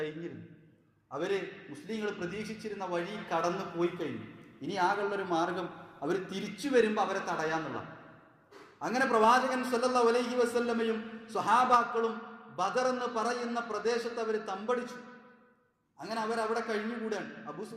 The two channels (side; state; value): both; identical; correlation 1.00